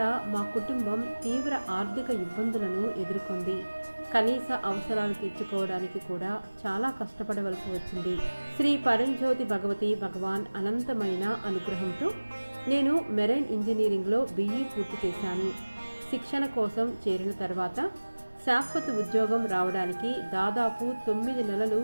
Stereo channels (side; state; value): both; inverted; correlation -1.00